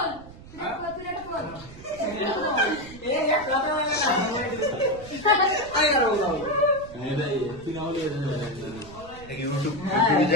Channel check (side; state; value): right; noise; rumble, 18 dB below the sound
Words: তুই এটা বল এই এক কথা বলে না আই আর বললাম তুই না হলে ইউটিউব